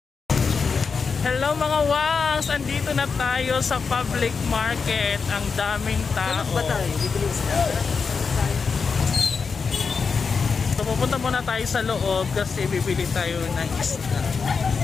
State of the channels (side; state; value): right; quieter; 5.3 dB